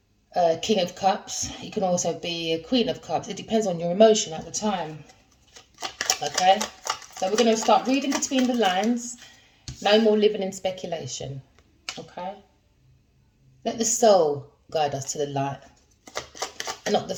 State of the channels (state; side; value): identical; both; correlation 1.00